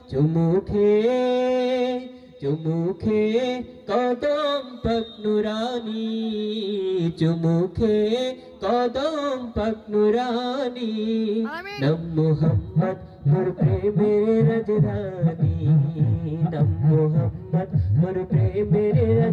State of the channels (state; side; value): identical; both; correlation 1.00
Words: চুমুখে চুমুখে কদম পাক নুরানি, চুমুখে কদম পাক নুরানি। নাম মুহাম্মদ মোর প্রেমের রাজধানী, নাম মুহাম্মদ মোর প্রেমের